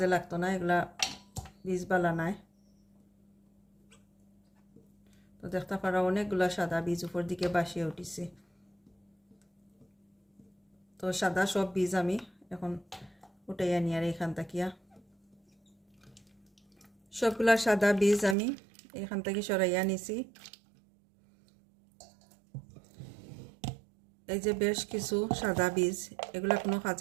লাগতো না, এগুলা বীজ বালা নাই। তো দেখতে পারা অনেকগুলা সাদা বীজ উপর দিকে বাসিয়ে উঠিছে। তো সাদা সব বীজ আমি এখন উঠাইয়া নিয়ে আর এখান থাকিয়া সবগুলা সাদা বীজ আমি এখান থেকে সরাইয়া নিছি। এই যে বেশ কিছু সাদা বীজ, এগুলা কোনো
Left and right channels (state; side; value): drops out; left; at 18.4 s